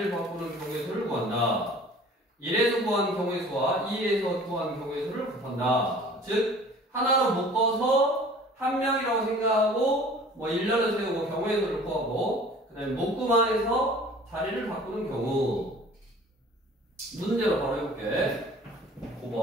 바꾸는 경우의 수를 구한다. 1에서 구한 경우의 수와 2에서 구한 경우의 수를 곱한다. 즉 하나로 묶어서 한 명이라고 생각하고 뭐 일렬을 세우고 경우의 수를 구하고 그 다음에 묶음 안에서 자리를 바꾸는 경우. 문제로 바로 해볼게.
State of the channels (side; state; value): both; normal; correlation 0.47